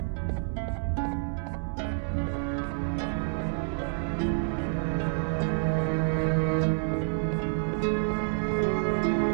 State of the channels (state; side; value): silent; left; 59 dB below the other